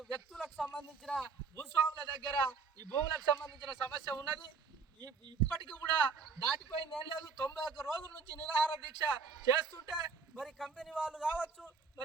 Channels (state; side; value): quieter; left; 5.3 dB